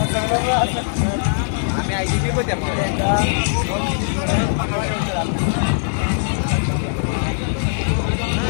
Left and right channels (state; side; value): silent; right; 66 dB below the other